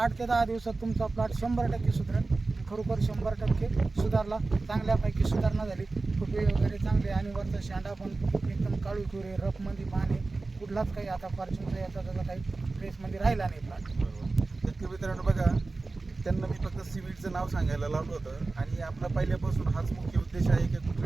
ते 10 दिवसात तुमचा प्लॉट 100% सुधारेल. खरोखर 100% सुधारला, चांगल्यापैकी सुधारणा झाली. फुटवे वगैरे चांगले आणि वरचा शेंडा पण एकदम काळू कुरे, रफमध्ये पाणी, कुठलाच काही आता फॉर्च्यूनचा याचा त्याचा काही ट्रेसमध्ये राहिला नाही प्लॉट. तर मित्रांनो बघा, त्यांना मी फक्त सीवीडचं नाव सांगायला लावलं होतं आणि आपला पहिल्यापासून हाच मुख्य उद्देश आहे की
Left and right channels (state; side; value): quieter; left; 3.5 dB